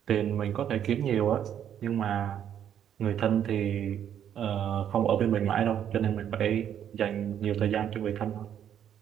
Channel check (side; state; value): left; quieter; 9.6 dB